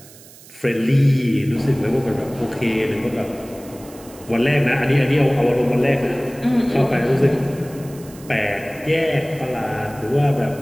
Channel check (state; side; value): noise; right; hiss, 21 dB below the sound